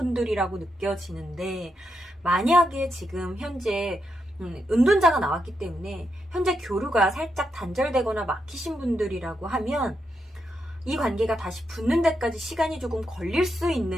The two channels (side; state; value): both; normal; correlation 0.83